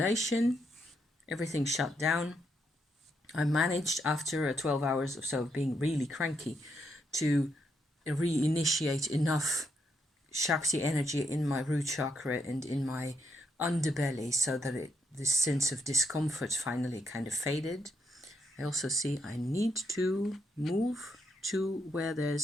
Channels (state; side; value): normal; both; correlation 0.78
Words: everything shut down. I managed after 12 hours or so of being really cranky to reinitiate enough Shakti energy in my root chakra and in my underbelly so that this sense of discomfort finally kind of faded. I also see I need to move to where